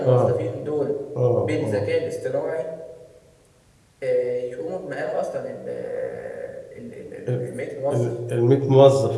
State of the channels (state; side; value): identical; both; correlation 1.00